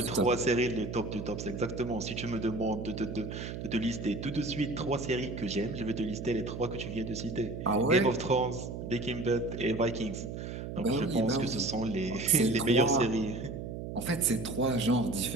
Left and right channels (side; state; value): right; noise; hum, 7 dB below the sound